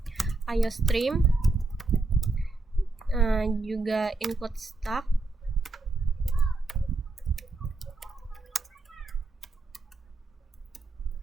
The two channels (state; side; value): quieter; left; 3.3 dB